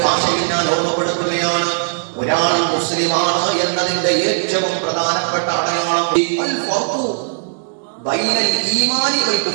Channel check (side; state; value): left; silent; digital silence